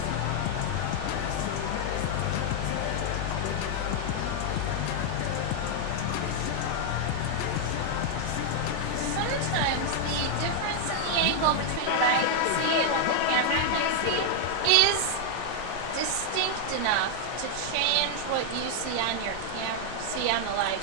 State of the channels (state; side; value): different; both; correlation 0.00